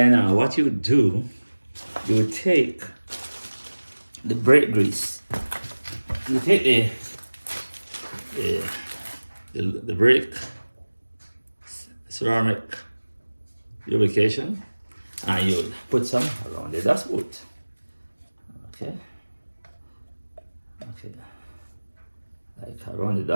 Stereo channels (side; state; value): both; inverted; correlation -1.00